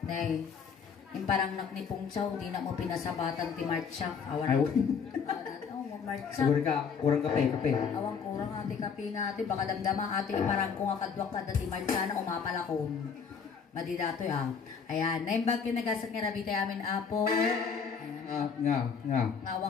na yung parang naknipong chow di na mo pinasabatan ti Marcha awan Marcha. Siguro ka, kurang kape. Awang kurang ati kape nga ati, baka damdama ati parang kung akadwak ka dati Marcha na umapalakon. Madidato ya. Ayan, naimbag kinagasat nga rabi tayo amin apo. Nga.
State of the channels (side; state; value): right; quieter; 6.3 dB